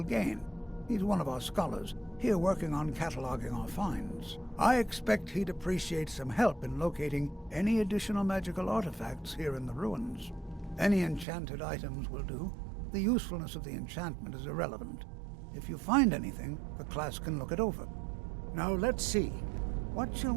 Gain? He's one of our scholars, here working on cataloging our finds. I expect he'd appreciate some help in locating any additional magical artifacts here in the ruins. Any enchanted items will do. The usefulness of the enchantment is irrelevant. If you find anything, the class can look it over. Now let's see. What shall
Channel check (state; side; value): drops out; left; at 11.2 s